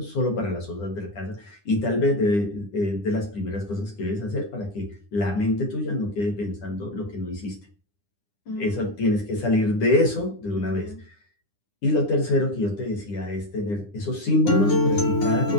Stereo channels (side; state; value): right; late; 9.9 ms